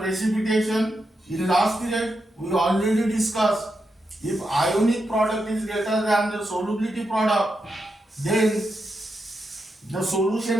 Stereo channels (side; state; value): both; normal; correlation 0.85